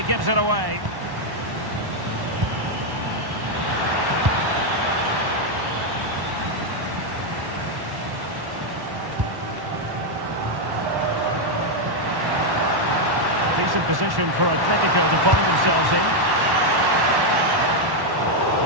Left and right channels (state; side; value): late; left; 1.1 ms